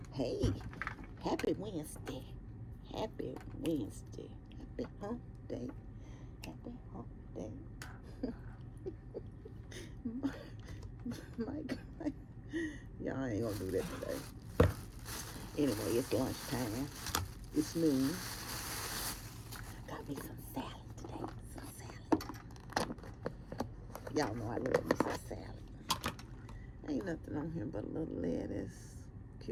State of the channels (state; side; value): identical; both; correlation 1.00